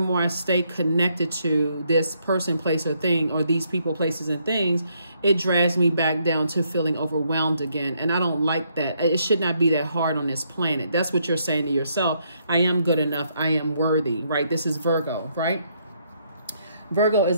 more I stay connected to this person, place, or thing, or these people, places, and things, it drags me back down to feeling overwhelmed again. And I don't like that. It should not be that hard on this planet. That's what you're saying to yourself. I am good enough. I am worthy, right? This is Virgo, right? Virgo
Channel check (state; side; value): inverted; both; correlation -0.73